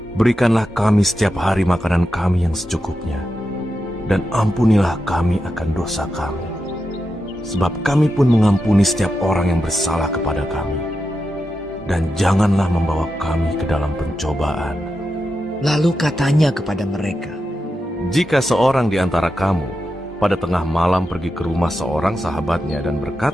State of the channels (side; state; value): both; normal; correlation 0.88